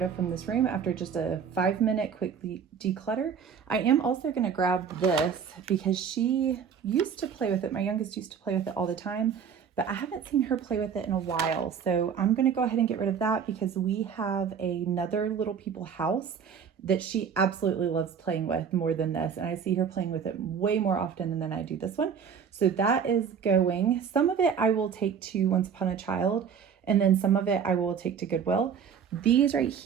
of from this room after just a 5-minute quickly declutter. I am also going to grab this because she used to play with it. My youngest used to play with it all the time, but I haven't seen her play with it in a while. So I'm going to go ahead and get rid of that because we have another Little People house that she absolutely loves playing with more than this. And I see her playing with it way more often than I do this one. So that is going. Some of it I will take to Once Upon a Child, and then some of it I will take to Goodwill. These right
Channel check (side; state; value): left; quieter; 7.1 dB